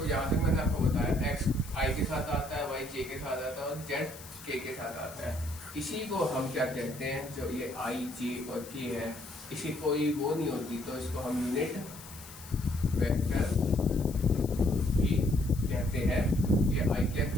यहाँ तक मैंने आपको बताया, एक्स आई के साथ आता है, वाई जे के साथ आता है, और जेड के साथ आता है। इसी को हम क्या कहते हैं, जो ये आई जे और के है, इसी कोई वो नहीं होती तो इसको हम यूनिट वेक्टर भी कहते हैं, ये आई कैप,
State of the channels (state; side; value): noise; left; hiss, 16 dB below the sound